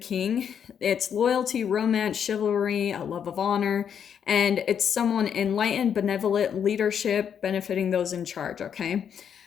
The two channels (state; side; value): quieter; right; 8.1 dB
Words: it's loyalty, romance, chivalry, a love of honor, and it's someone enlightened, benevolent, leadership, benefiting those in charge, okay?